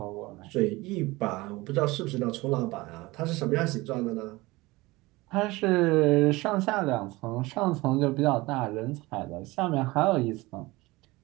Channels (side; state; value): left; quieter; 21.3 dB